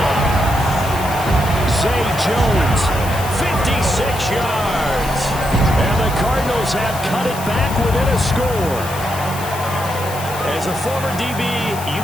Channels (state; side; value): noise; left; hiss, 12 dB below the sound